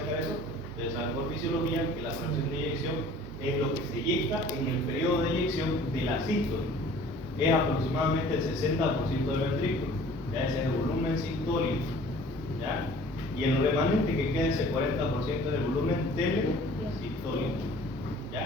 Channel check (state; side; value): normal; both; correlation 0.49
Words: eso? Ustedes saben por fisiología que la fracción de eyección es lo que se eyecta en el periodo de eyección de la sístole. Es aproximadamente el 60% del ventrículo. Ya ese es el volumen sistólico. ¿Ya? Y el remanente que queda, ese 40% del volumen telesistólico.